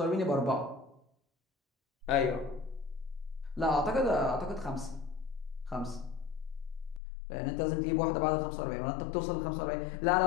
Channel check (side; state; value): right; drops out; at 7.0 s